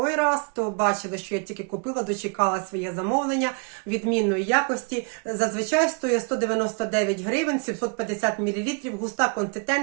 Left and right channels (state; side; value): quieter; left; 38.3 dB